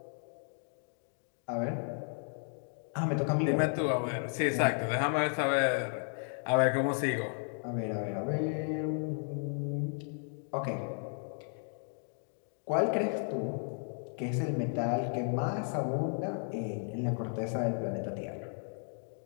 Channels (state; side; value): silent; right; 55 dB below the other